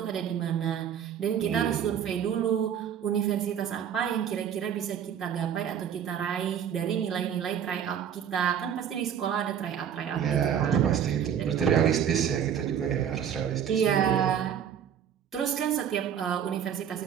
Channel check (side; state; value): left; quieter; 8.8 dB